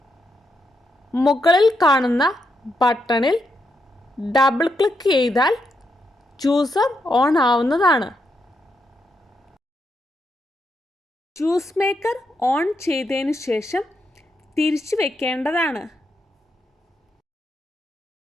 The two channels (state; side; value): normal; both; correlation 0.81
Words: മുകളിൽ കാണുന്ന ബട്ടണിൽ ഡബിൾ ക്ലിക്ക് ചെയ്താൽ ജ്യൂസർ ഓൺ ആവുന്നതാണ്. ജ്യൂസ് മേക്കർ ഓൺ ചെയ്തതിന് ശേഷം തിരിച്ചു വെക്കേണ്ടതാണ്.